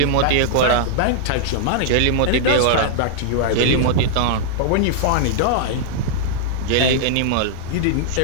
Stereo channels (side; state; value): both; different; correlation -0.01